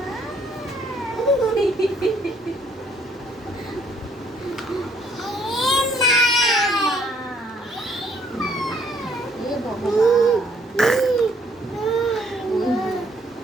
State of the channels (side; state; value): both; normal; correlation 0.65